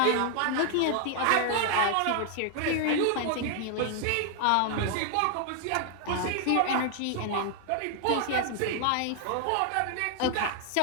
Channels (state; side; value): different; both; correlation 0.00